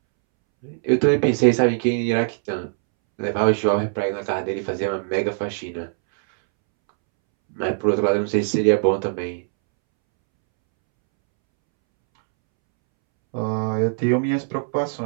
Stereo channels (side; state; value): left; silent; 64 dB below the other